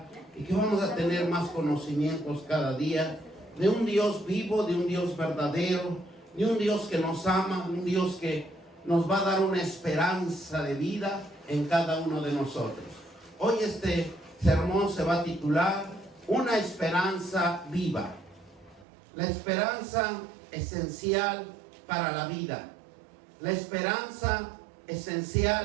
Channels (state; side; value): drops out; left; at 18.9 s